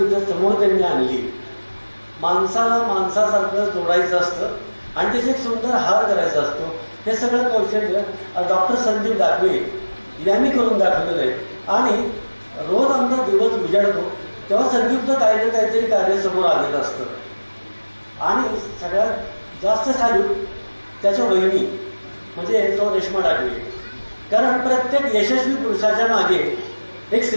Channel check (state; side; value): inverted; both; correlation -1.00